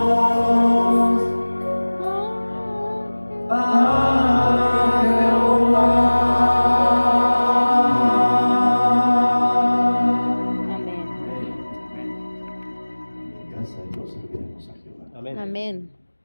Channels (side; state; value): both; inverted; correlation -1.00